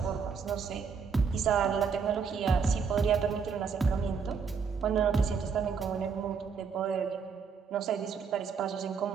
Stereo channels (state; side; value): quieter; left; 5.9 dB